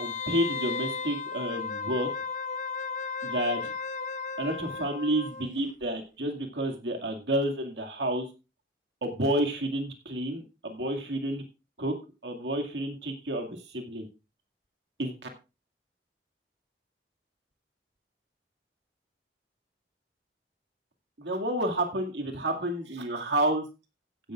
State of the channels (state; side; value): normal; both; correlation 0.12